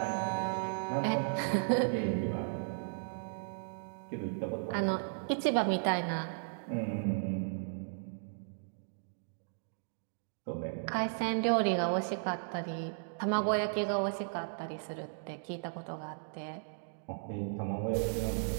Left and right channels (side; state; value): left; silent; digital silence